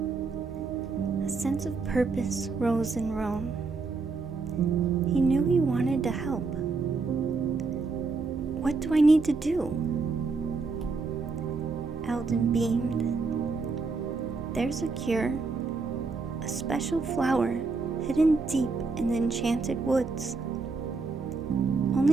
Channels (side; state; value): left; quieter; 4.2 dB